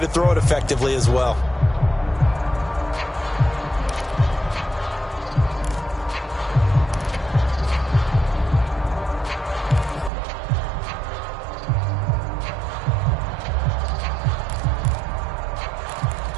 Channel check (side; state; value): left; drops out; at 10.1 s